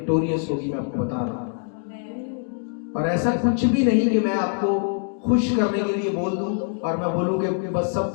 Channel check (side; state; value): right; silent; 57 dB below the other